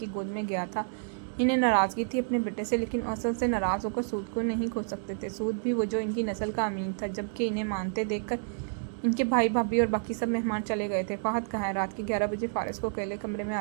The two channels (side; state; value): left; silent; digital silence